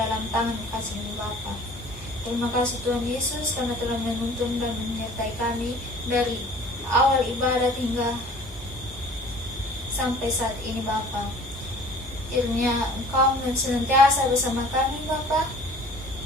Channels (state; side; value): normal; both; correlation 0.48